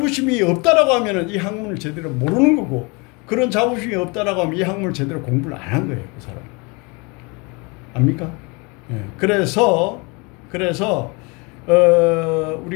없다라고 하면 이 학문을 제대로 모르는 거고, 그런 자부심이 없다라고 하면 이 학문을 제대로 공부를 안 한 거예요. 그 사람. 압니까? 예. 그래서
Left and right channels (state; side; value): quieter; right; 29.3 dB